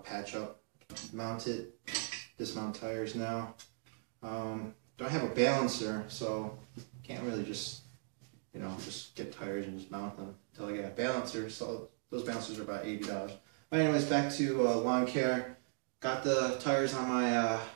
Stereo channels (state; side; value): silent; left; digital silence